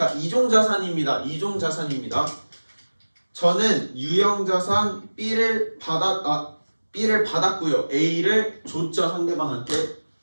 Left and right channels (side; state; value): both; inverted; correlation -1.00